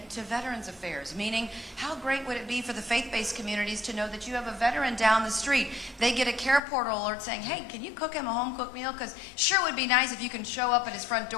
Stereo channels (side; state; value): right; drops out; at 6.6 s